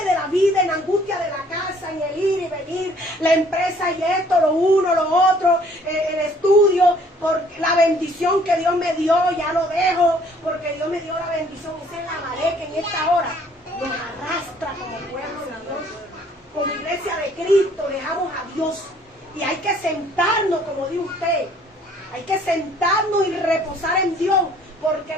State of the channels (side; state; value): both; normal; correlation 0.59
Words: de la vida, en la angustia de la casa, en el ir y venir, la empresa y esto, lo uno, lo otro, el estudio, por la bendición que Dios me dio, ya lo dejo, porque Dios me dio la bendición. Esa es la marea que en esta hora nos arrastra como pueblo de Dios. Como iglesia de Cristo, dejamos a Dios. Y hay que sentarnos, como dice usted, hay que sentarnos y reposar en Dios, porque